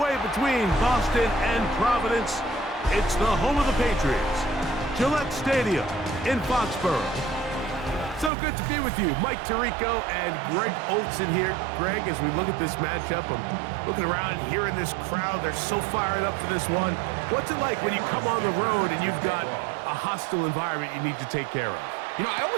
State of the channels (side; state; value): left; drops out; at 8.3 s